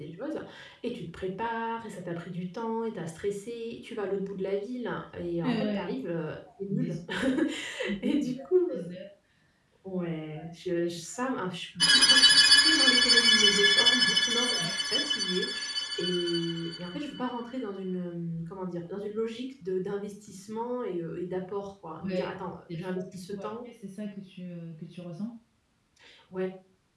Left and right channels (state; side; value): identical; both; correlation 1.00